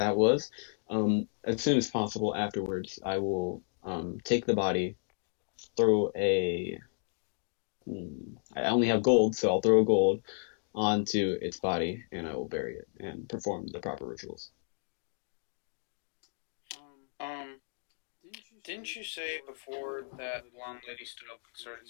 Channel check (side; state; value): right; silent; digital silence